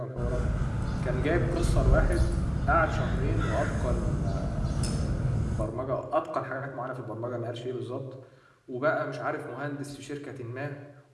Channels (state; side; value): identical; both; correlation 1.00